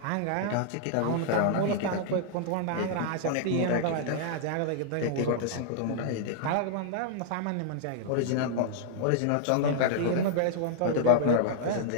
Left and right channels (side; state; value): both; different; correlation -0.01